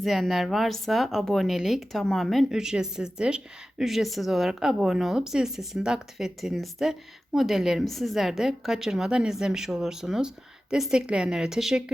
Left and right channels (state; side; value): normal; both; correlation 0.95